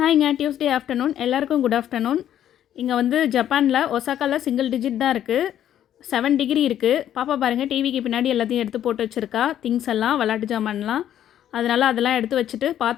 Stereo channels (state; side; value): quieter; right; 10.9 dB